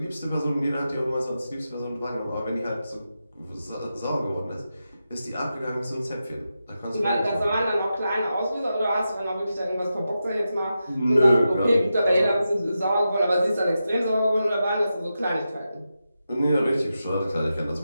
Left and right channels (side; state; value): both; inverted; correlation -0.89